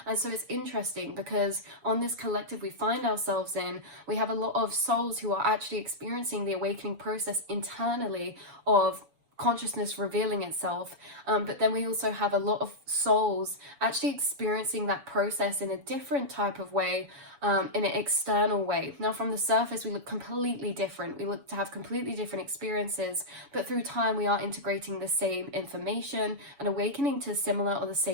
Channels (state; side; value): late; left; 7.0 ms